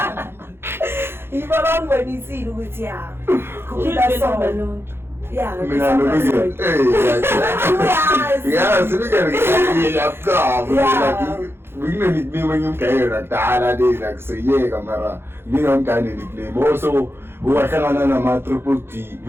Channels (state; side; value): late; left; 0.11 ms